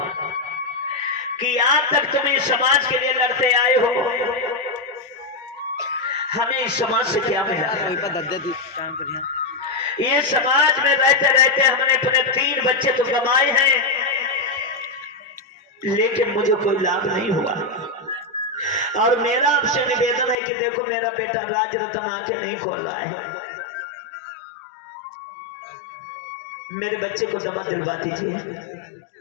कि आज तक तुम इस समाज के लिए लड़ते आए हो, हमें इस समाज से क्या मिला? ये समाज में रहते रहते हमने अपने 3 बच्चे तो कमाए हैं लेकिन मुझे कोई लाभ नहीं हुआ। और मेरा आपसे निवेदन है कि देखो मेरा बेटा राज रतन आंखें नहीं खोल रहा है, मेरे बच्चे को दवा दिलवा दीजिए,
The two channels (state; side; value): drops out; right; at 20.4 s